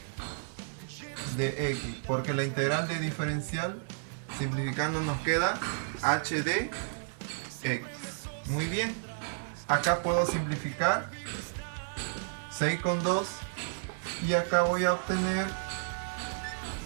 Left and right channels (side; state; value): left; silent; digital silence